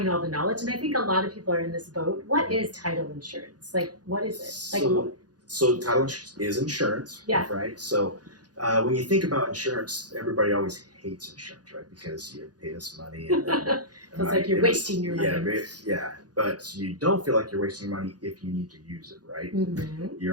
all the knowledge. And I think a lot of people are in this boat. What is title insurance? What is it? So title insurance is insurance. Yeah. Right. So when you think about insurance, everybody always hates insurance, right? Because you pay this money, and then, It's like you're wasting your money. Yeah, but you don't feel like you're wasting your money if you need to use it, right? Mm-hmm.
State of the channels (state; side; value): late; left; 0.69 ms